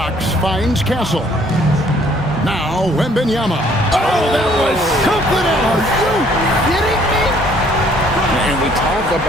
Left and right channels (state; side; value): normal; both; correlation 0.61